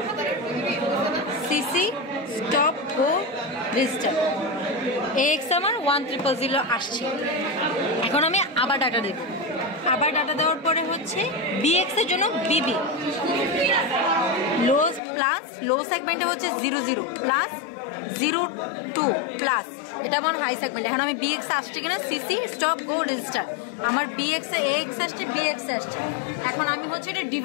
সিসি স্টপ গো রেজিস্টার AX আমার 1000 আসছে। এখন আমি আবার ডাটা দেব, আবার ডাটা দেওয়ার পরে হচ্ছে BX এর জন্য BB লো প্লাস লো সেগমেন্টে হচ্ছে 00 প্লাস 02 প্লাস এটা আমার হাই সেগমেন্ট। এখন আমি BX আসছে কিনা সিসি স্টপ গো রেজিস্টার আমার BX এ AX আসছে BX আসছে। এখন আমি হচ্ছে এটা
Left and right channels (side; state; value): right; drops out; at 15.0 s